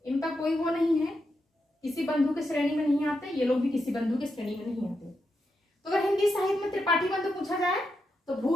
इनका कोई वो नहीं है, किसी बंधु के श्रेणी में नहीं आते। ये लोग भी किसी बंधु के श्रेणी में नहीं आते। तो अगर हिंदी साहित्य में त्रिपाठी बंधु पूछा जाए तो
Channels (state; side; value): normal; both; correlation 0.85